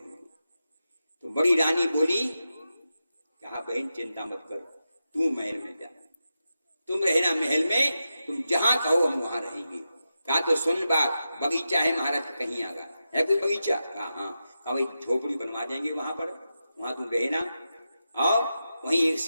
तो बड़ी रानी बोली, कहा बहन चिंता मत कर, तू महल में जा, तुम रहना महल में, तुम जहां कहो हम वहां रहेंगे। कहा तो सुन बात, बगीचा है महाराज कहीं आगा, है कोई बगीचा? कहा हाँ। कहा भाई झोपड़ी बनवा देंगे वहां पर, वहां तुम रहना, और वहीं एक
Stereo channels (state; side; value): inverted; both; correlation -0.90